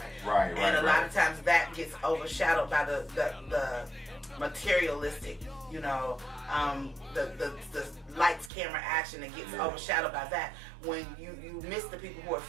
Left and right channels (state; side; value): drops out; left; at 8.5 s